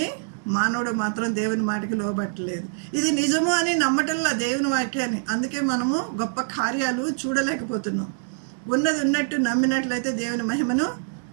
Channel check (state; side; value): silent; left; digital silence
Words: మానవుడు మాత్రం దేవుని మాటకి లోబట్టలేదు. ఇది నిజము అని నమ్మటంలా దేవుని వాక్యాన్ని. అందుకే మనము గొప్ప కార్యాలు చూడలేకపోతున్నాం. ఉన్నది ఉన్నట్టు నమ్మినట్లయితే దేవుని మహిమను